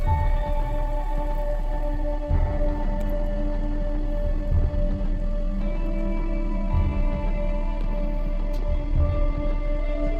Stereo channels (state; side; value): identical; both; correlation 1.00